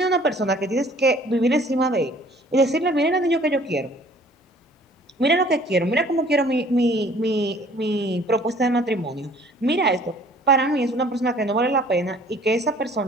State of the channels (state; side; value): normal; both; correlation 0.54